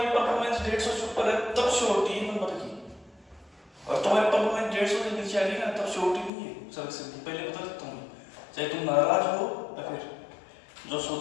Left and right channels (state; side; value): drops out; right; at 6.3 s